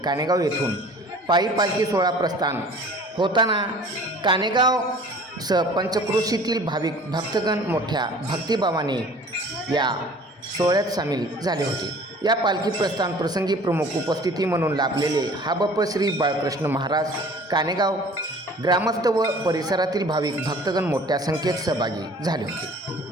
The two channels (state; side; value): normal; both; correlation 0.48